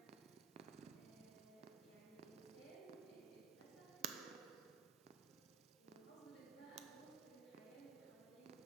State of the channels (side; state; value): left; quieter; 6.2 dB